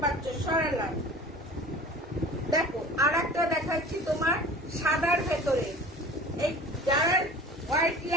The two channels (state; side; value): normal; both; correlation 0.41